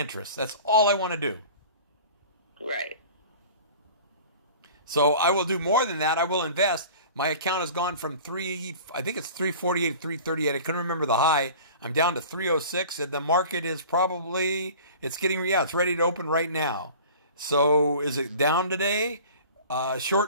That's all I want to do. Right. So I will do more than that. I will invest. My account has gone from 348, 338. I couldn't remember the high. I'm down to 306, and the market is it's ready to open right now. So is it down today?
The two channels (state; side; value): inverted; both; correlation -0.42